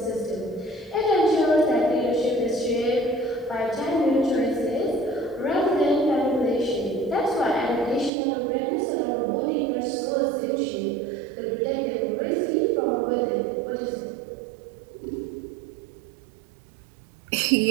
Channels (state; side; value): drops out; left; at 8.1 s